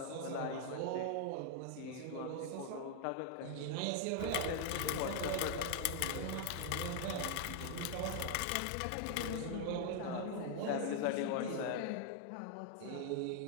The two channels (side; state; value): both; different; correlation 0.00